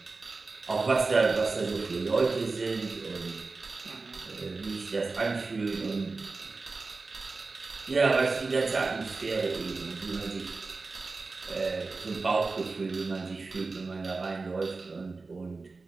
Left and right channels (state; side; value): quieter; left; 3.9 dB